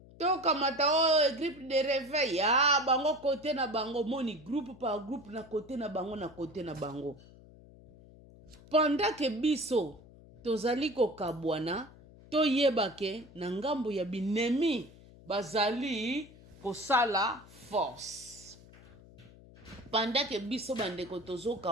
Tokamata groupe de réveil bango kote na bango. Moni groupe par groupe na kote na bango na kote na bango. Pendant que biso tozali ko kabwana toyebake na ngambo ya binemi bazali kosala force. Pendant que biso bandeko tozo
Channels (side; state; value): left; noise; hum, 22 dB below the sound